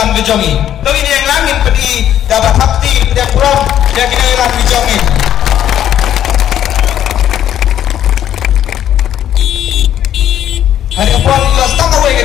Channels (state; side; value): quieter; right; 10.9 dB